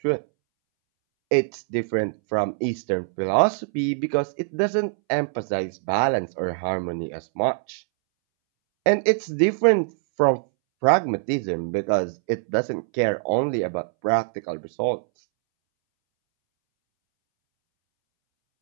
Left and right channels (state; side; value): silent; left; 63 dB below the other